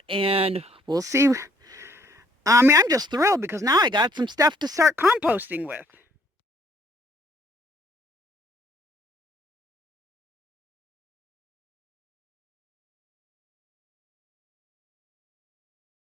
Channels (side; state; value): both; normal; correlation 0.64